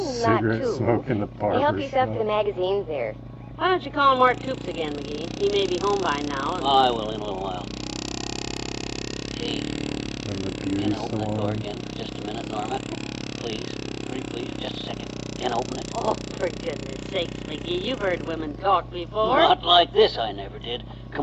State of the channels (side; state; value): both; identical; correlation 1.00